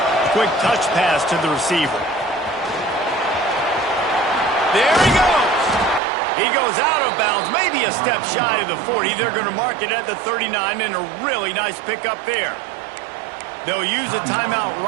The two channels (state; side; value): drops out; left; at 6.0 s